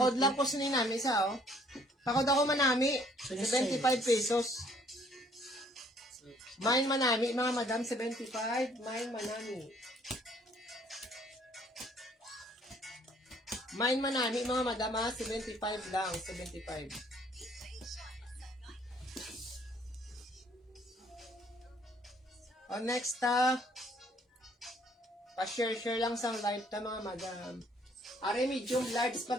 lang ko sinin namin isa, oh. Pakod ako manami. 75 pesos. Mine manami, mga madam, 75. Mine manami. Mine manami, mga madam, ha? 75 lang. 75. O, next, pa-share-share lang sa live ta, mga madam. Are medium large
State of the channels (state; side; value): normal; both; correlation 0.61